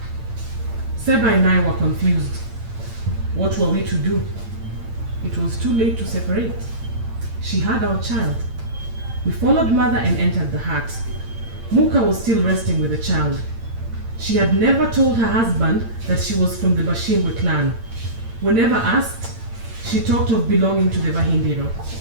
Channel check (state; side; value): late; left; 8.8 ms